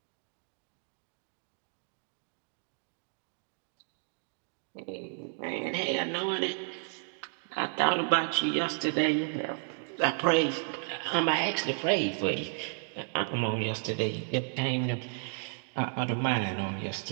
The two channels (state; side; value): silent; left; 56 dB below the other